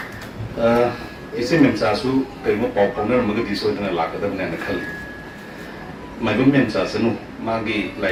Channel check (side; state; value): both; identical; correlation 1.00